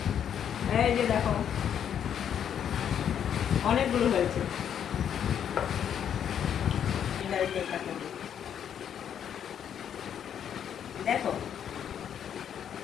এই যে দেখো অনেকগুলো হয়েছে। দেখো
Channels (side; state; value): right; quieter; 8.9 dB